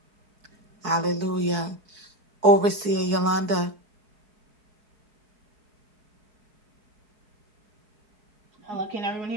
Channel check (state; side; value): late; left; 4.6 ms